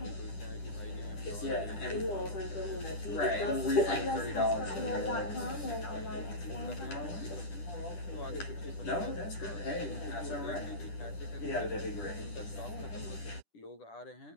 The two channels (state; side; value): late; right; 10 ms